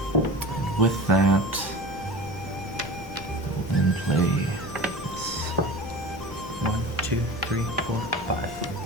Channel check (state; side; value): normal; both; correlation 0.35